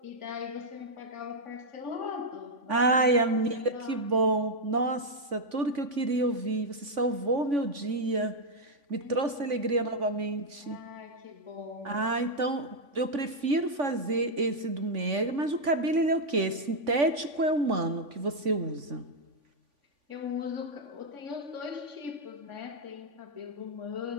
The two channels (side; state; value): left; late; 3.5 ms